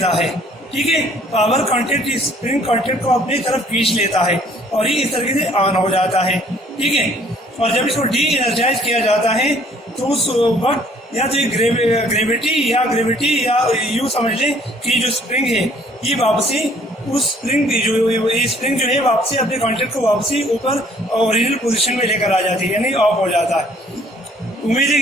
है, ठीक है। पावर कॉन्टेक्ट इस स्प्रिंग कॉन्टेक्ट को अपनी तरफ खींच लेता है और ये इस तरीके से ऑन हो जाता है, ठीक है। और जब इसको डी एनर्जाइज किया जाता है तो उस वक्त या तो ग्रेविटी या यूँ समझ लें कि जो स्प्रिंग है ये वापसी उस स्प्रिंग जो है वापसी अपने कॉन्टेक्ट को वापसी ऊपर ओरिजिनल पोजीशन में लेकर आ जाती है, यानी ऑफ हो जाता है। उम्मीद है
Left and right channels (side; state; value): both; normal; correlation 0.59